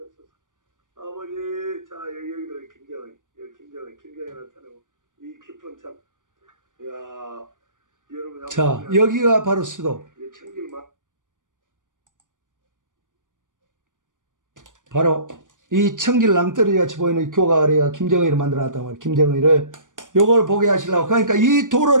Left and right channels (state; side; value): late; left; 0.88 ms